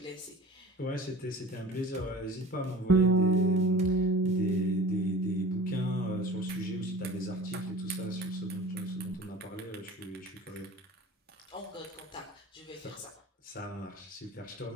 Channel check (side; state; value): both; normal; correlation 0.40